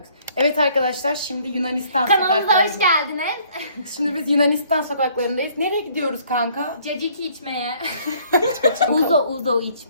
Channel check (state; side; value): inverted; both; correlation -0.60